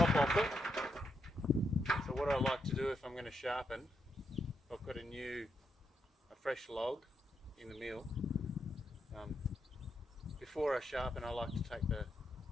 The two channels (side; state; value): both; normal; correlation 0.81